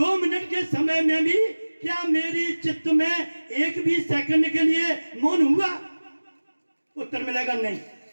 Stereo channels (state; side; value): inverted; both; correlation -1.00